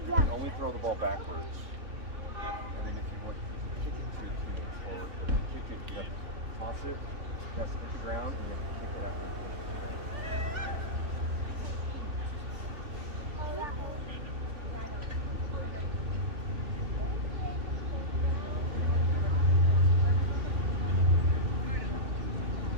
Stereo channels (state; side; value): late; left; 3.1 ms